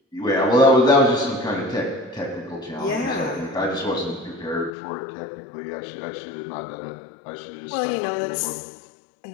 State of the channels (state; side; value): drops out; right; at 4.7 s